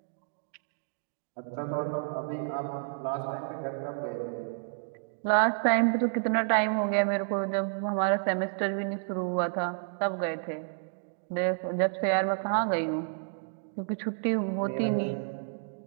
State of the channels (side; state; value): left; silent; digital silence